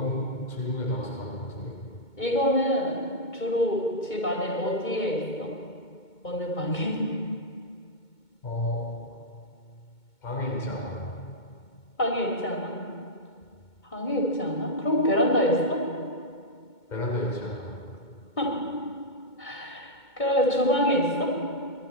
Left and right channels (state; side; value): late; right; 2.2 ms